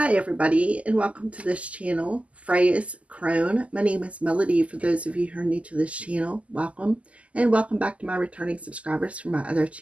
everybody, and welcome to this channel, Freya's Crone. My name is Melody. For those of you who are new to this channel, welcome. And welcome back to my returning subscribers from my other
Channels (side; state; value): left; late; 0.065 ms